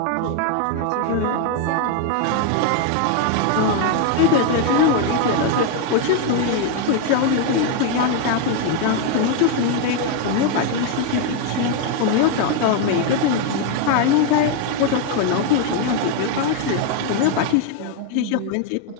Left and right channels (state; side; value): different; both; correlation 0.01